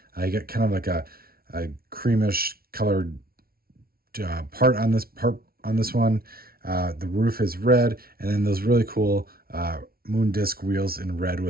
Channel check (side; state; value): left; late; 0.44 ms